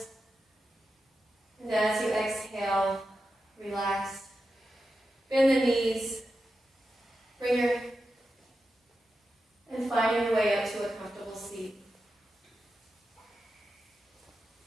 And as you exhale, relax. Bend the knees. Bring your, and finding your way up to a comfortable seat.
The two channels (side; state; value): both; normal; correlation 0.90